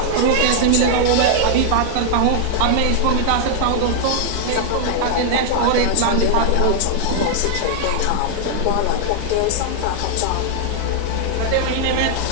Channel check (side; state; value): both; different; correlation -0.01